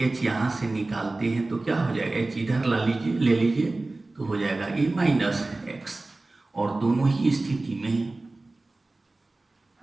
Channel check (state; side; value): quieter; left; 3.1 dB